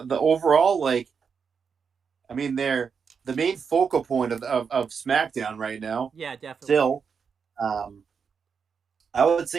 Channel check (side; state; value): left; quieter; 6.1 dB